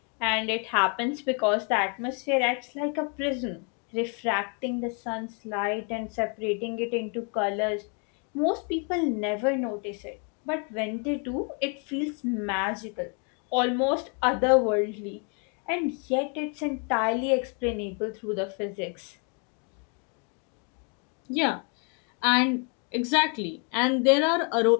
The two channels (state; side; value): quieter; right; 38.0 dB